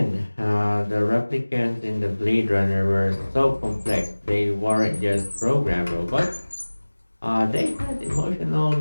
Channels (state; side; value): inverted; both; correlation -1.00